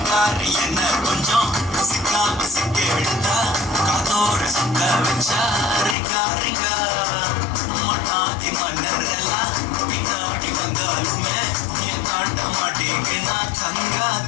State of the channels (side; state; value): right; drops out; at 6.0 s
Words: என்ன கொஞ்சம் சிக்காம சிக்க விழுந்தா காதோர சுத்த வச்சா ரிங்கா ரிங்கா மண்ணாதி மன்னர் எல்லாம் பின்னாடி வந்தாலுமே என் காட்ட மாட்டேங்குனா தங்கா